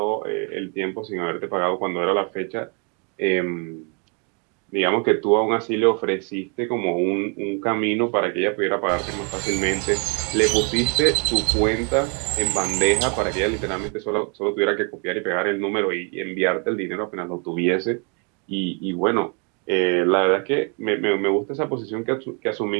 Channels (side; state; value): left; quieter; 35.5 dB